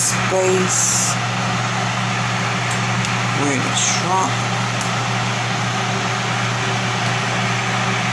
where the shrunk.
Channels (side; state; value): both; identical; correlation 1.00